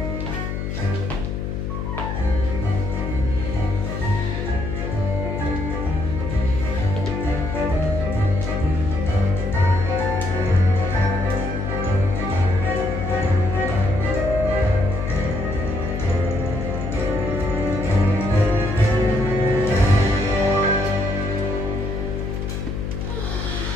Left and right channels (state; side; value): noise; left; hum, 4 dB below the sound